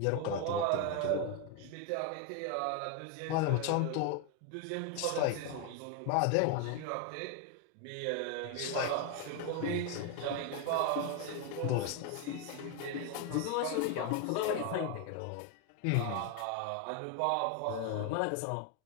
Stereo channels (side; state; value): both; different; correlation 0.01